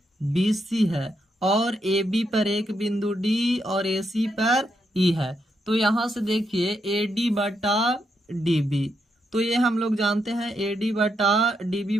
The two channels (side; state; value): both; normal; correlation 0.80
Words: B C है और ए बी पर एक बिंदु डी और ए सी पर ई है। तो यहाँ से देखिए ए डी बटा डी बी, तो ये हम लोग जानते हैं ए डी बटा डी बी